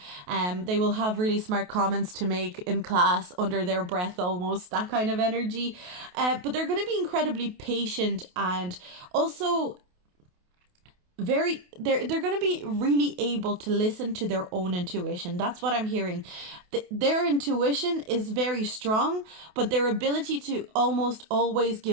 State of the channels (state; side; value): late; left; 28 ms